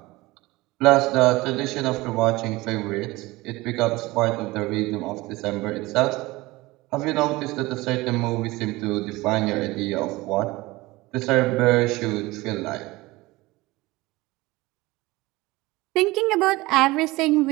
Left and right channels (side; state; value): left; quieter; 20.6 dB